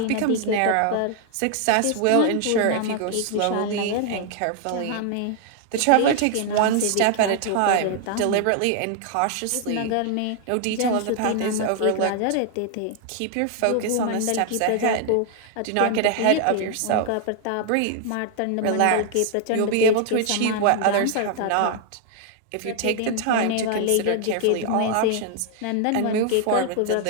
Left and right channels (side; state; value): both; different; correlation 0.00